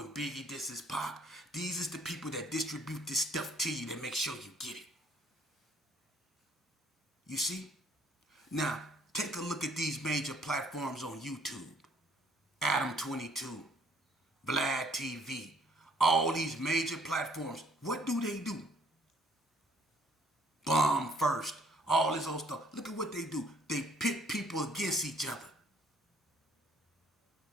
Biggie disses Pac, these is the people that distribute this stuff to you that make sure you get it. You see? Now, take a look at these major platforms on YouTube. Adam 22, Vlad TV, all these major platforms. What do? Bomb first, all this old stuff. Look at what they do. They pit people against each other.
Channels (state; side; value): normal; both; correlation 0.62